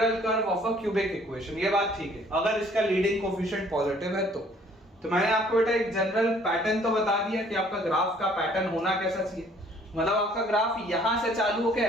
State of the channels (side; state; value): both; normal; correlation 0.59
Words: curve of a cubic equation. ये बात ठीक है अगर इसका लीडिंग कोफिशिएंट पॉजिटिव है तो मैंने आपको बेटा एक जनरल पैटर्न तो बता दिया कि आपका ग्राफ का पैटर्न होना कैसा चाहिए। मतलब आपका ग्राफ यहां से चालू होकर